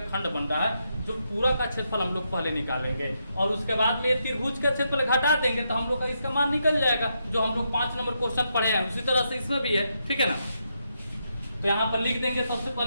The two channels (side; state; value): both; inverted; correlation -0.81